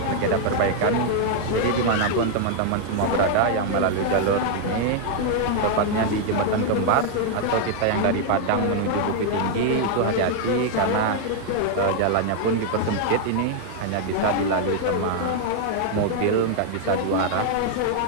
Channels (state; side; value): different; both; correlation 0.00